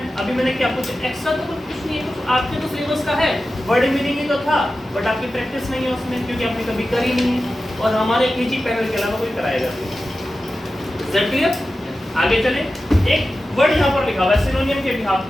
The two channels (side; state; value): both; normal; correlation 0.93